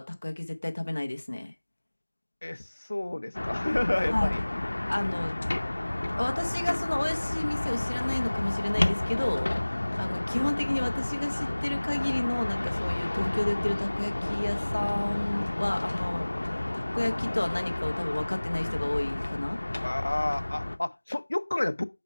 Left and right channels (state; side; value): inverted; both; correlation -1.00